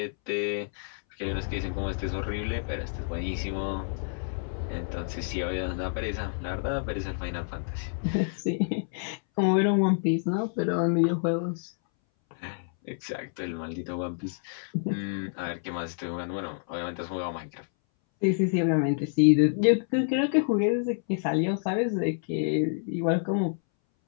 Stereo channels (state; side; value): silent; right; 59 dB below the other